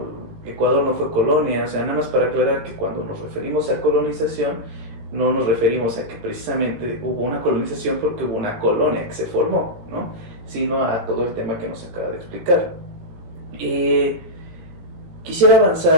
Ecuador no fue colonia. O sea, nada más para aclarar que cuando nos referimos a colonización no nos referimos a que precisamente hubo una colonización porque hubo una colonia que se formó, ¿no? Sino a todo el tema que nos acaba de explicar. Quisiera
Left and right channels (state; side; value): late; left; 17 ms